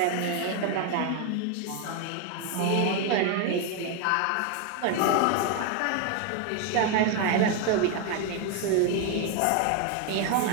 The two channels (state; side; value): different; both; correlation 0.01